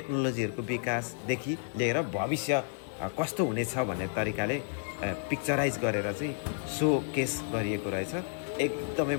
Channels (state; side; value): silent; right; digital silence